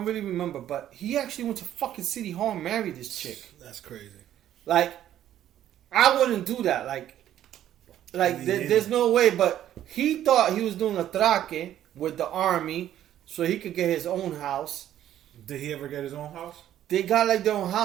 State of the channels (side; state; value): left; quieter; 11.7 dB